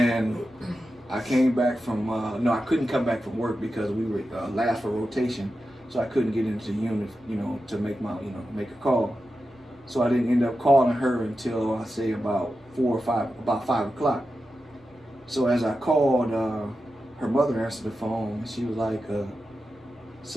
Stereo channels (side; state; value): both; normal; correlation 0.91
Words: I came back from, I couldn't come back from work because we were last for rotation. So I couldn't get into the unit, to make make a call. So I didn't end up calling her until, I say, about 5 o'clock. So as I called, her mother answered the phone, and she was like,